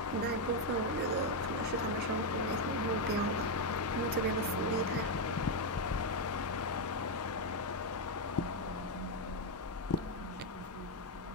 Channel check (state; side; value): normal; both; correlation 0.04